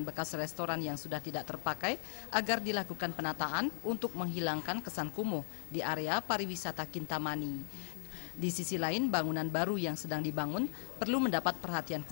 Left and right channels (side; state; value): right; silent; digital silence